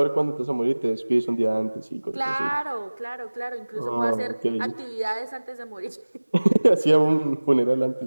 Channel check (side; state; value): both; inverted; correlation -1.00